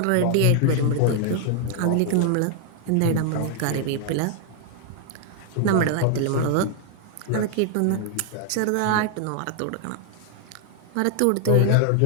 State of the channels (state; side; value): different; both; correlation 0.00